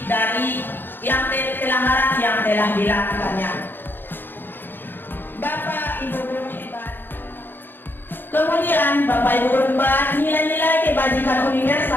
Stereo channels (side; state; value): right; late; 0.097 ms